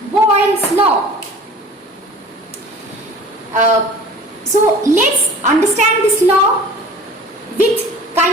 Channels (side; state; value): both; normal; correlation 0.44